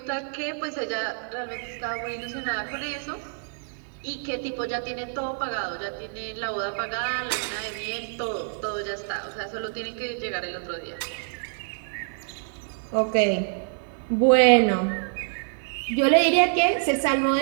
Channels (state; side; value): silent; left; 59 dB below the other